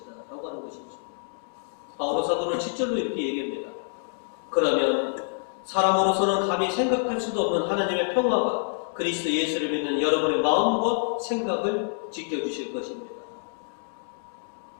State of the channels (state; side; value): silent; right; digital silence